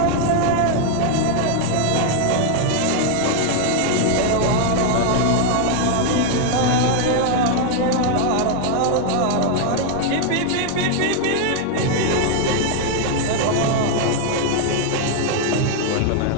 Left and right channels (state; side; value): different; both; correlation 0.00